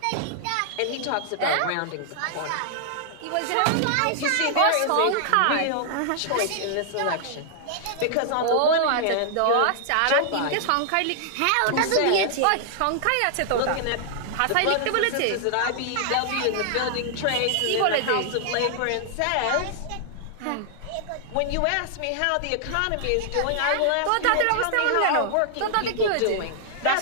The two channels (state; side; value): different; both; correlation -0.01